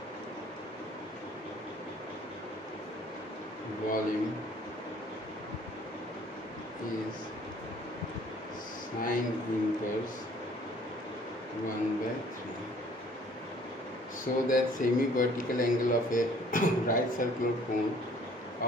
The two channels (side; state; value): both; normal; correlation 0.56